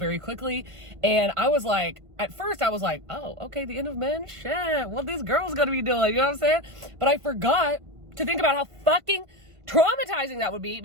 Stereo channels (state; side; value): late; left; 1.5 ms